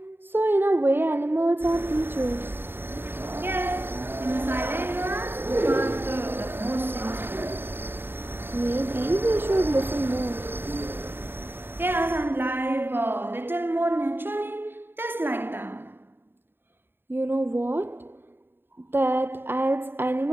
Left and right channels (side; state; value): left; late; 0.10 ms